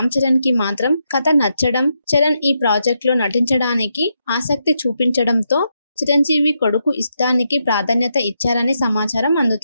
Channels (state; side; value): inverted; both; correlation -0.82